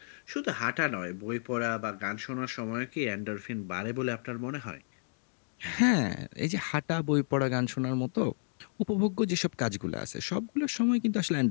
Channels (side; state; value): right; silent; digital silence